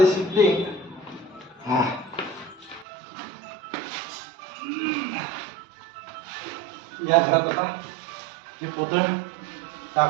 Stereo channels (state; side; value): drops out; left; at 2.9 s